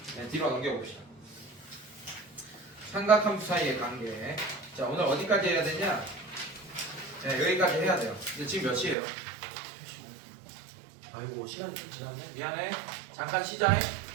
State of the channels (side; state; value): left; drops out; at 9.0 s